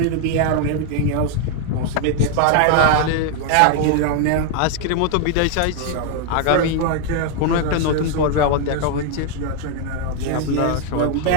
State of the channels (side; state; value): both; different; correlation 0.00